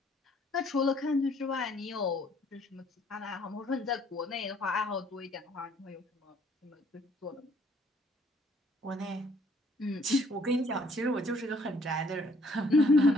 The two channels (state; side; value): normal; both; correlation 0.63